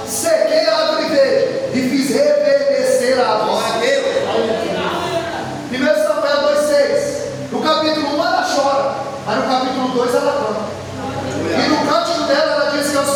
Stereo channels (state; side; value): identical; both; correlation 1.00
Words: sequei a árvore verde e fiz reverdecer a árvore. 1 Samuel 2:6 no capítulo 1 ela chora, mas no capítulo 2 ela canta. E no cântico dela ela diz que é o